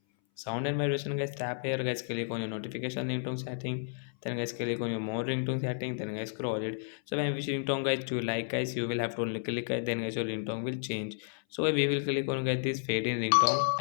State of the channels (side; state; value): right; silent; 57 dB below the other